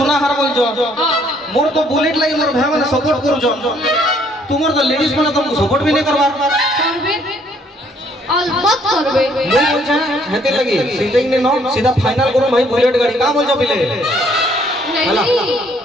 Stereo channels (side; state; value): both; normal; correlation 0.65